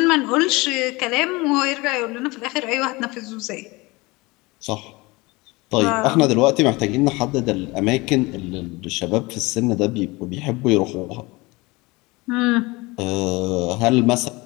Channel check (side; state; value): right; quieter; 23.5 dB